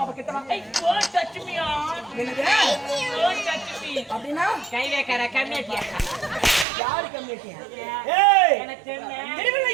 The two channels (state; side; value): drops out; left; at 6.7 s